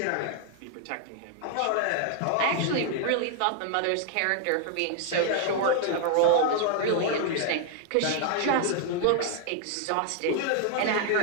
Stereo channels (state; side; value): different; both; correlation 0.00